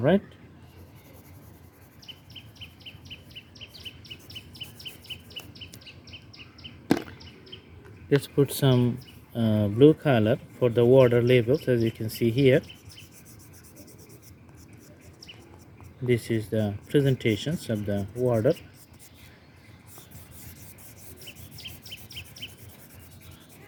let's put some blue color for the water levels. As you can see here, this is the presentations of the water.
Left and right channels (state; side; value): identical; both; correlation 1.00